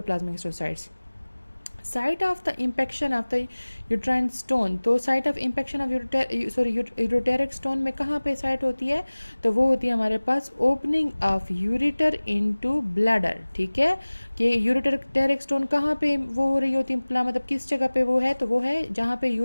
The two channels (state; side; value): inverted; both; correlation -1.00